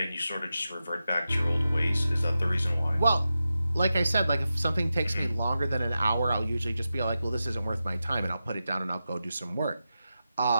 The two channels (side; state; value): both; inverted; correlation -0.91